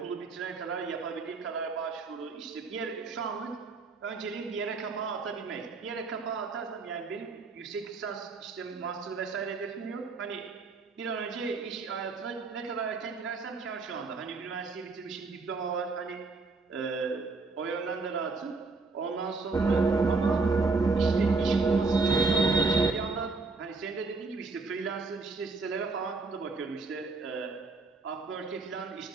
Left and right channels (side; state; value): left; quieter; 4.0 dB